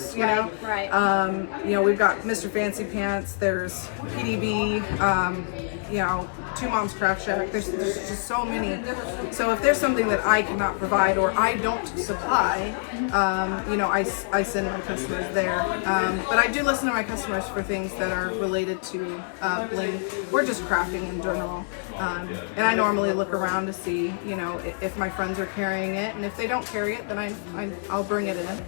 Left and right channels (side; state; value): right; silent; digital silence